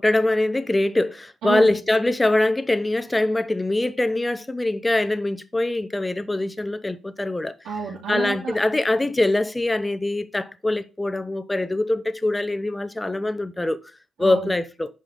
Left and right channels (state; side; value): normal; both; correlation 0.98